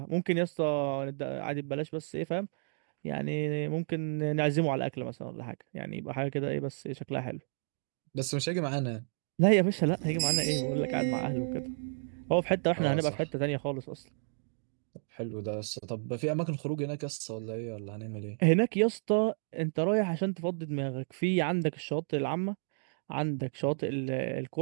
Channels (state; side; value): silent; left; digital silence